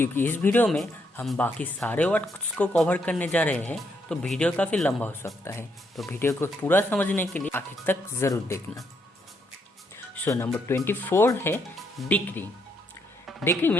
इस वीडियो में हम बाकी सारे वर्ड्स को कवर करने जा रहे हैं तो वीडियो काफ़ी लंबा हो सकता है। तो वीडियो को पूरा समझने के लिए आखिर तक ज़रूर देखना। सो नंबर 24 है decree. Decree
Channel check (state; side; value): normal; both; correlation 0.75